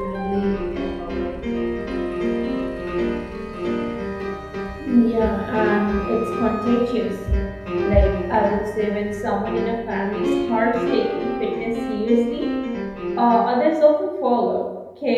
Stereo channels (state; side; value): identical; both; correlation 1.00